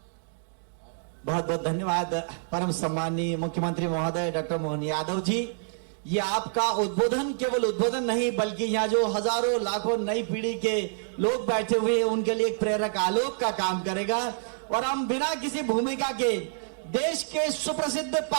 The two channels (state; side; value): silent; left; digital silence